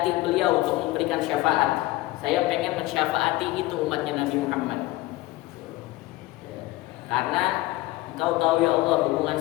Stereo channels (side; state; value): right; quieter; 18.8 dB